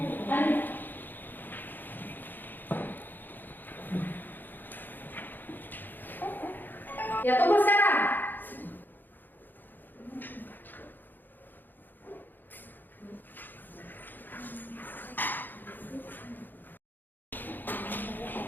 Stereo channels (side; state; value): right; late; 0.090 ms